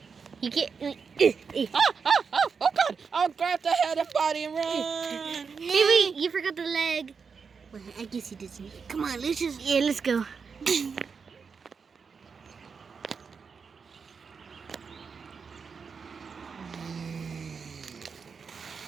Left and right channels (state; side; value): quieter; left; 5.6 dB